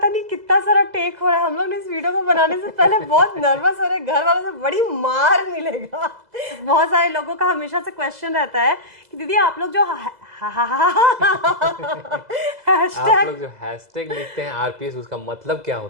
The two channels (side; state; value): left; late; 2.0 ms